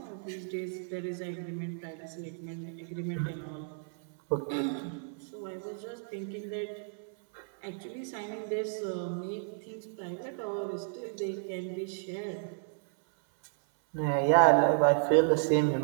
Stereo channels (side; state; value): left; silent; 56 dB below the other